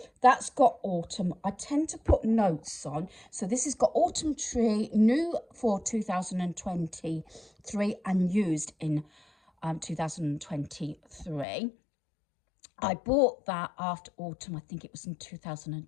That's got autumn. I tend to put notes on. So this has got autumn tree, new for 2023 and used in 2023. I bought that after autumn. I think it was in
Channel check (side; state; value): right; drops out; at 11.5 s